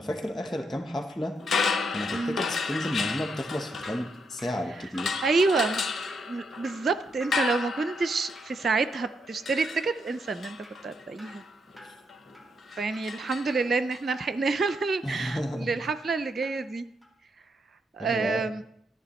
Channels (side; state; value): both; normal; correlation 0.79